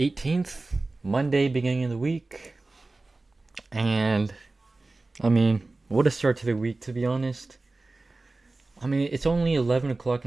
Monday, beginning of the week. And what a start to the week, to be honest. It's only 11 o'clock in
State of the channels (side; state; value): left; quieter; 3.2 dB